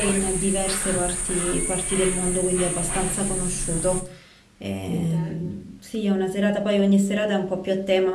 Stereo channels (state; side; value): identical; both; correlation 1.00